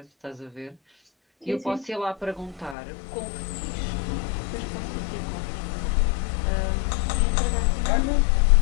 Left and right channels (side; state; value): right; drops out; at 2.8 s